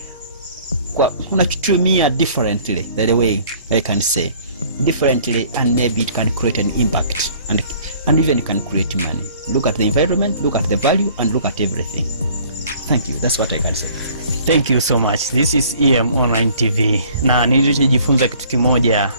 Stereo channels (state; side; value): inverted; both; correlation -0.54